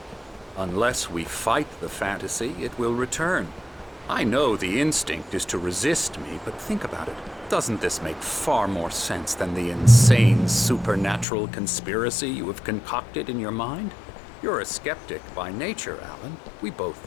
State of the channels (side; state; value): right; drops out; at 11.2 s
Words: Unless we fight the fantasy, it will return. I know the instinct is to resist me, but think about it. Doesn't this make far more sense than the insane supernatural conspiracy you have concocted in your mind? You're a skeptic by nature, Alan. We both